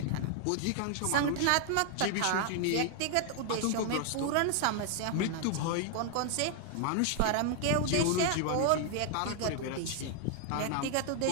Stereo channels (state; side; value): different; both; correlation 0.00